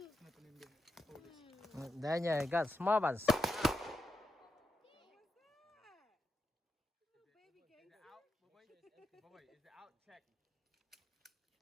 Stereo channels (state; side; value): normal; both; correlation 0.85